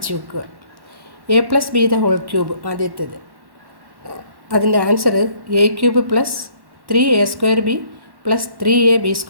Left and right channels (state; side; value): late; left; 1.1 ms